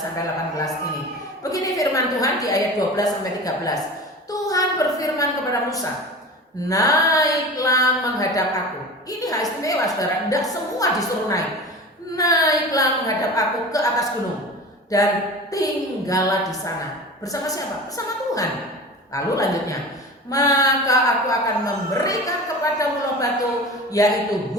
18 ini. Begini firman Tuhan di ayat 12 sampai 13. Tuhan berfirman kepada Musa, naiklah menghadap aku. Ini hak istimewa saudara, tidak semua disuruh naik. Naiklah menghadap aku ke atas gunung dan tinggallah di sana. Bersama siapa? Bersama Tuhan. Lalu lanjutnya, maka aku akan memberikan kepadamu loh batu, yaitu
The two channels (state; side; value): normal; both; correlation 0.34